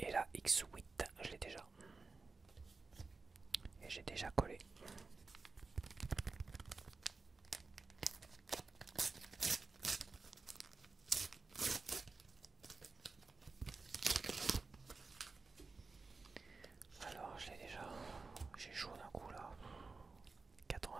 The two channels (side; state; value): left; quieter; 4.2 dB